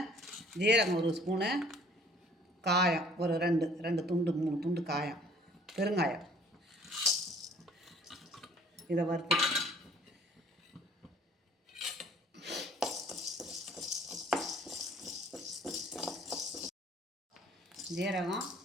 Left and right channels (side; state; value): both; normal; correlation 0.55